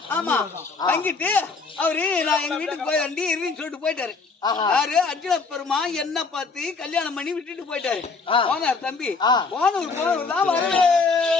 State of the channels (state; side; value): quieter; right; 4.4 dB